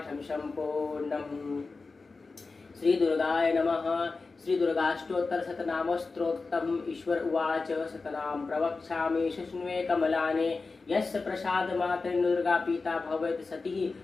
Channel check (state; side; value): quieter; right; 4.0 dB